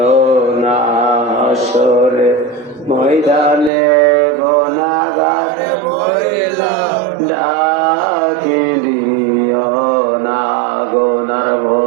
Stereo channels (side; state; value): left; drops out; at 3.7 s